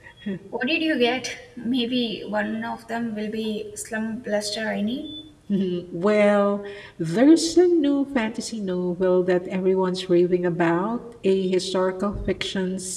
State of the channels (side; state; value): both; identical; correlation 1.00